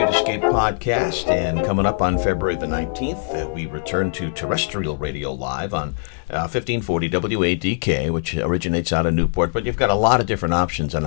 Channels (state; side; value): silent; right; 65 dB below the other